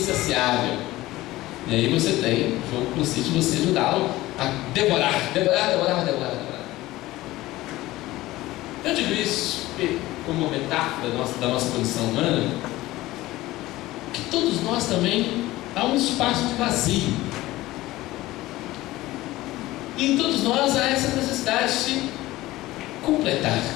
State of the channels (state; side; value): quieter; right; 17.5 dB